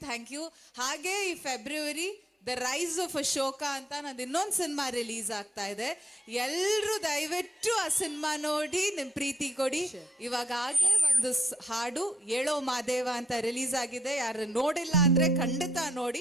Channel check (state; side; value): normal; both; correlation 0.75